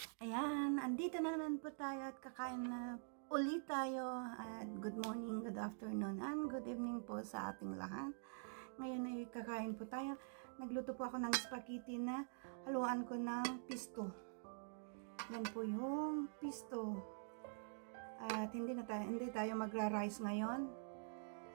Ayan, andito na naman po tayo at kakain na ulit tayo. At good morning, good afternoon, and good evening po sa ating lahat. Ngayon ay kakain po tayo. Nagluto po ako ng spaghetti na haluan ko ng pisto. Yan po yung pisto. At hindi tayo magra-rice ngayon.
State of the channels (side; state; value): left; silent; digital silence